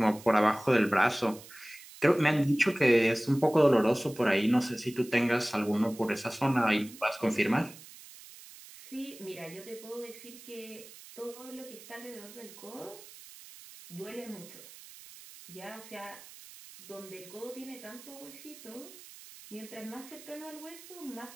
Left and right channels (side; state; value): right; noise; hiss, 18 dB below the sound